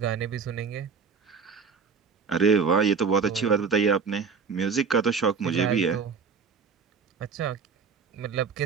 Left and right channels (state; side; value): quieter; left; 5.6 dB